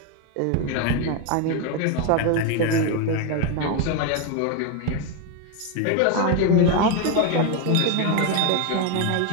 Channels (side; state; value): both; different; correlation 0.02